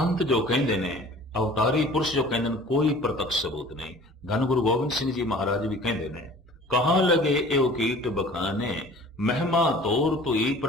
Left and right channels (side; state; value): both; normal; correlation 0.46